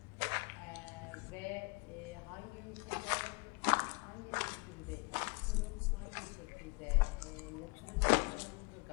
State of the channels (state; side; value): quieter; right; 28.6 dB